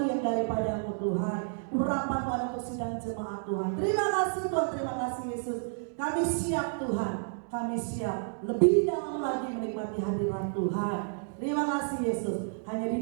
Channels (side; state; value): left; silent; digital silence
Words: yang daripada-Mu Tuhan. Urapan-Mu ada untuk sidang jemaat Tuhan. Terima kasih Tuhan, terima kasih Yesus. Kami siap Tuhan, kami siap lebih dalam lagi menikmati hadirat Tuhan. Terima kasih Yesus. Hanya di